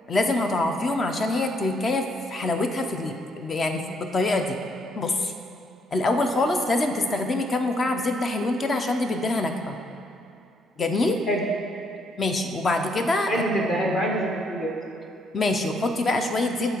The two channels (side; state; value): both; normal; correlation 0.72